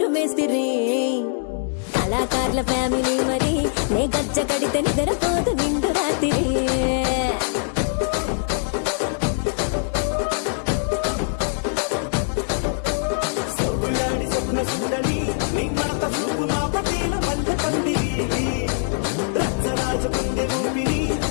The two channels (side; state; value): right; silent; 64 dB below the other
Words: మేస్తిరి కళాకారుల ఫ్యామిలీ మరి నే గజ్జ కడితే నిద్రపోదు నిండు రాత్రి